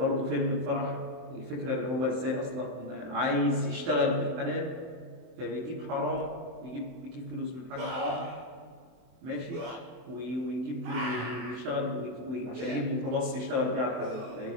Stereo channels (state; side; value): late; left; 24 ms